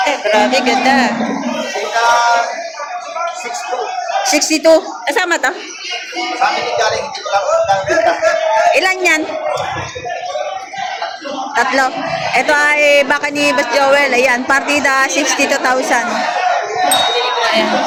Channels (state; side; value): identical; both; correlation 1.00